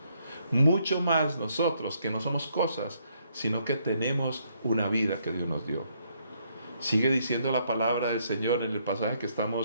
Mucho más nosotros que no somos cosas, sino que tenemos una vida que Dios nos dio. Sigue diciendo la palabra del Señor en el pasaje que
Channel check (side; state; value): both; inverted; correlation -0.72